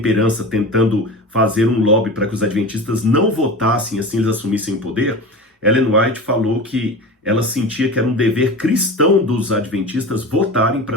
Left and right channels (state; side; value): normal; both; correlation 0.31